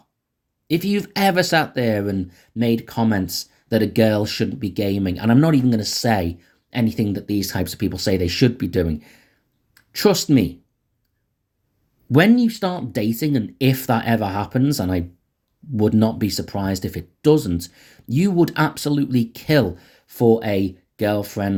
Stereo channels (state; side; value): identical; both; correlation 1.00